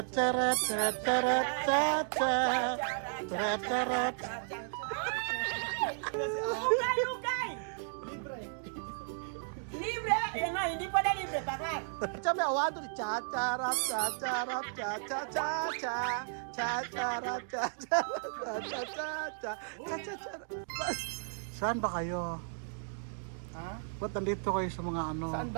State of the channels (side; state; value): left; silent; digital silence